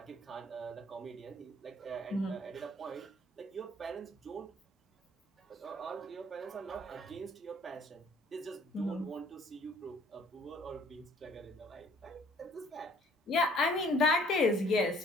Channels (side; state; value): both; normal; correlation 0.57